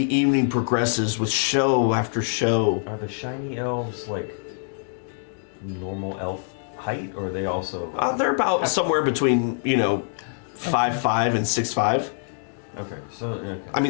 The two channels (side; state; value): right; silent; digital silence